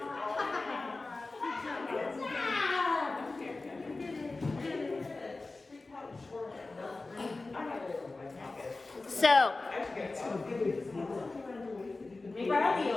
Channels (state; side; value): quieter; right; 3.4 dB